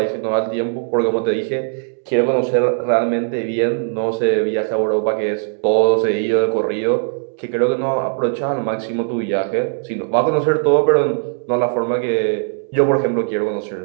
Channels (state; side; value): silent; left; digital silence